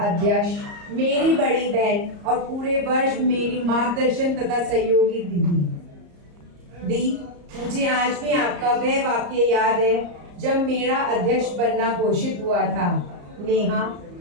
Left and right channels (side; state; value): left; late; 34 ms